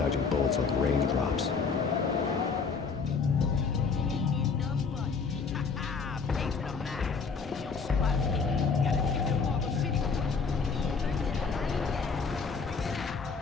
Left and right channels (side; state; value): right; quieter; 5.1 dB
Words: bullets like raindrops.